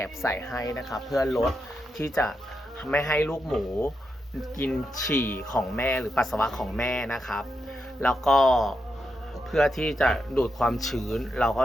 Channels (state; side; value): normal; both; correlation 0.85